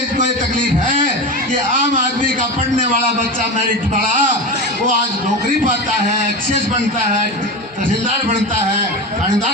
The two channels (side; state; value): both; normal; correlation 0.23